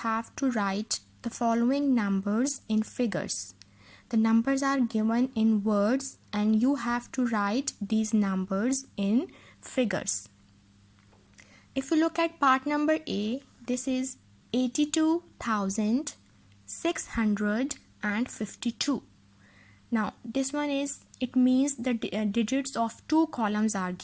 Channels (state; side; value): identical; both; correlation 1.00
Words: to write the following numbers in figures. The numbers are given in words and you have to write these numbers in figures. If you look at part number A, this is 82,652. Now this one is, it means the digits of two columns are